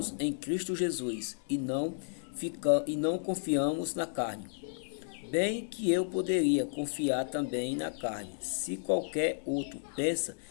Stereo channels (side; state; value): right; silent; digital silence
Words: em Cristo Jesus e não confiamos na carne. Bem que eu poderia confiar também na carne. Se qualquer outro pensa